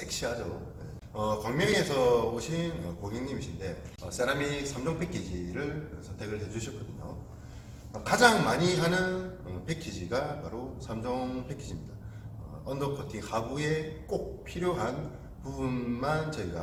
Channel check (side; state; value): both; identical; correlation 1.00